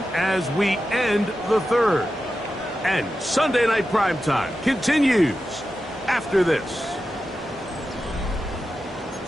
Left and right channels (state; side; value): normal; both; correlation 0.91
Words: as we end the 3rd. And Sunday Night Primetime continues after this.